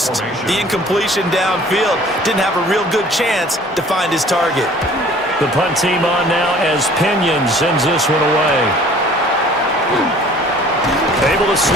the incompletion downfield. Didn't have a real good chance to find his target. The punt team on now as Pinion sends this one away. Able to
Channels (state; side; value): normal; both; correlation 0.51